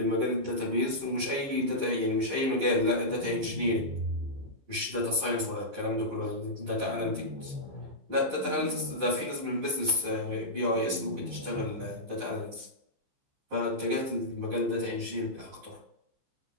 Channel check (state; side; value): late; left; 15 ms